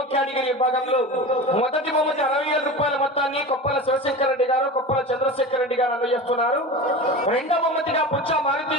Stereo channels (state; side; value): normal; both; correlation 0.30